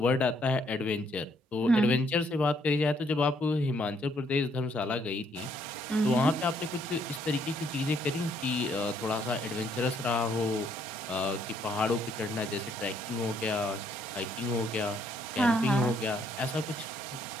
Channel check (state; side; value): normal; both; correlation 0.69